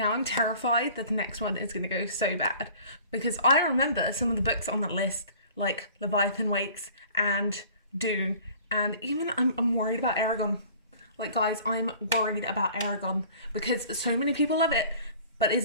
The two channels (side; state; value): both; inverted; correlation -0.49